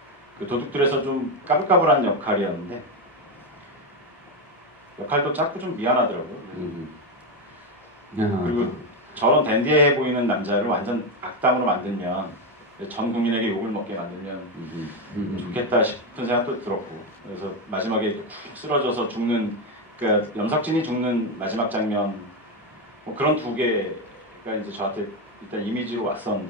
그 도둑들에서 좀 까불까불한 역할이었는데 역할도 작고 좀 미안하더라고요. 그리고 저런 댄디해 보이는 남자를 완전 악당으로 만들면 전 국민에게 욕을 먹게 만들면 좋겠다 싶은 생각도 들었고, 그래서 마지막에 푹 쓰러져서 죽는, 그러니까 염석진이 죽는 마지막 장면 뭐 그런 두 개가 이제 저한테 일단 이미지로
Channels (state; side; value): normal; both; correlation 0.09